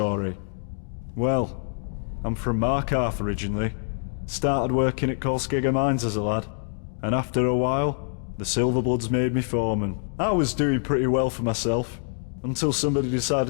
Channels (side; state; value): right; silent; digital silence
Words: Well, I'm from Markarth originally. Started working at Kolskegger Mines as a lad, and after a while, the Silverbloods made me foreman. I was doing pretty well for myself, until somebody